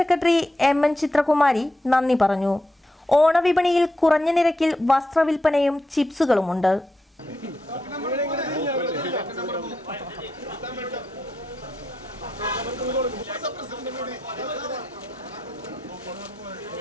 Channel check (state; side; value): normal; both; correlation 0.84